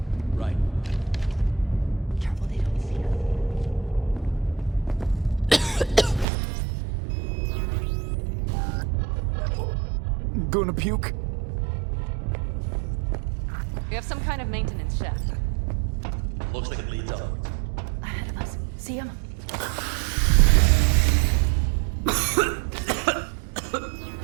Right. Gonna puke? We have some kind of maintenance shaft. Looks like it leads upwards. Ahead of us. See him?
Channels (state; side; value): drops out; left; at 6.2 s